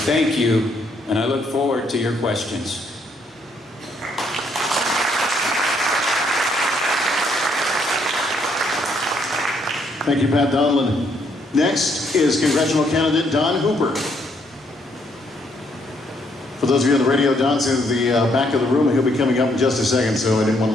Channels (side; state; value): both; normal; correlation 0.71